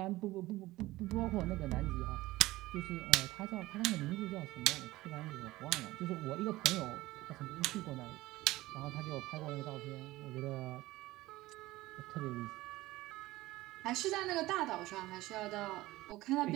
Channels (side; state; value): left; quieter; 18.1 dB